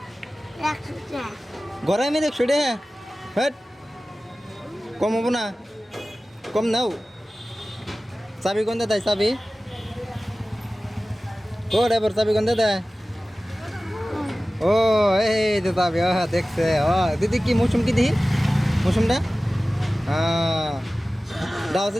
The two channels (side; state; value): both; normal; correlation 0.97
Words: গড়ামারি 100 টাকা। হেট কম হবো না? কম নাও। চাবি কোনতে দেয়? চাবি ও ড্রাইভার চাবি কোনতে দেয়? ও এই তো চাবি। দেখছে। দিদি কি মৌসুম কি দিহি মৌসুমটা? দাও